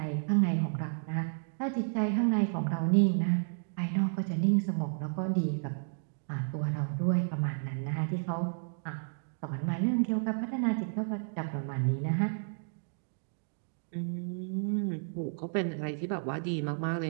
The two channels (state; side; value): silent; left; digital silence